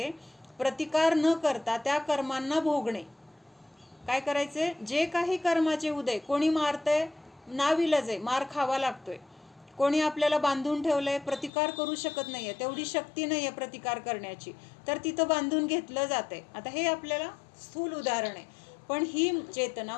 प्रतिकार न करता त्या कर्मांना भोगणे. काय करायचे? जे काही कर्माचे उदय, कोणी मारतंय, नाविलाज आहे, मार खावा लागतोय. कोणी आपल्याला बांधून ठेवलंय, प्रतिकार करू शकत नाहीये, तेवढी शक्ती नाहीये प्रतिकार करण्याची, तर तिथं बांधून घेतलं जातंय. आता हे आपल्याला स्थूल उदाहरण आहे. पण ही चेतना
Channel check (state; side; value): drops out; right; at 11.5 s